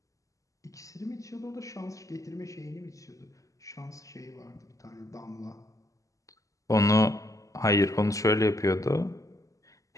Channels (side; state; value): right; late; 0.16 ms